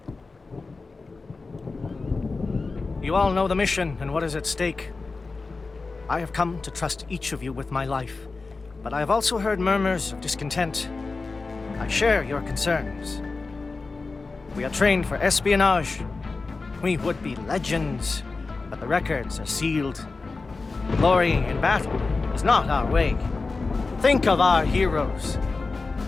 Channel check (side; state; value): right; quieter; 3.9 dB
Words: You all know the mission and what is at stake. I have come to trust each of you with my life, but I have also heard murmurs of discontent. I share your concerns. We are trained for espionage. We would be legends, but the records are sealed. Glory in battle is not our way. Think of our heroes.